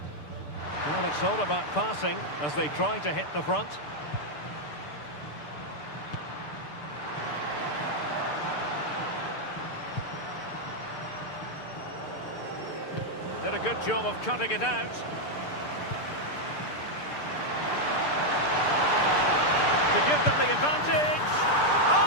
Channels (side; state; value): right; late; 6.8 ms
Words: Well, it's all about passing as they try to hit the front. Did a good job of cutting it out. To give them the advantage.